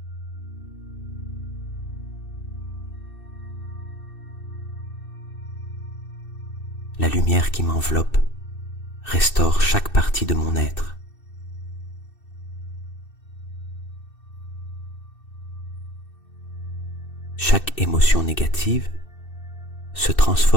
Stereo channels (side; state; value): right; late; 2.6 ms